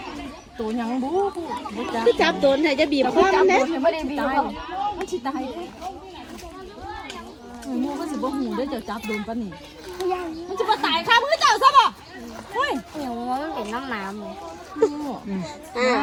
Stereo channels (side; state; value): both; identical; correlation 1.00